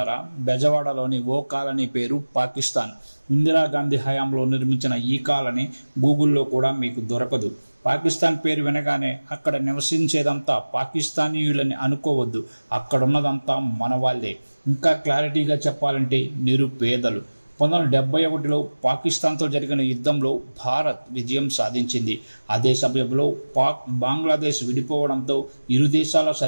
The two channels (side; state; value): both; inverted; correlation -1.00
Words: బెజవాడలోని ఓ కాలనీ పేరు పాకిస్తాన్. ఇందిరాగాంధీ హయాంలో నిర్మించిన ఈ కాలనీ గూగుల్లో కూడా మీకు దొరకదు. పాకిస్తాన్ పేరు వినగానే అక్కడ నివసించేదంతా పాకిస్తానీయులని అనుకోవద్దు. అక్కడున్నదంతా మన వాళ్ళే. ఇంకా క్లారిటీగా చెప్పాలంటే నిరుపేదలు. 1971లో పాకిస్తాన్తో జరిగిన యుద్ధంలో భారత్ విజయం సాధించింది. అదే సమయంలో బంగ్లాదేశ్ విడిపోవడంతో ఇరు దేశాల